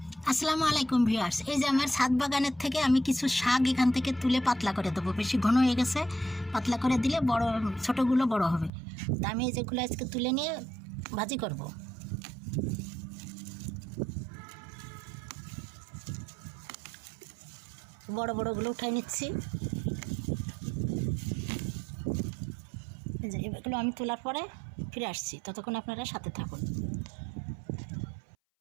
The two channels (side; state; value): left; drops out; at 8.7 s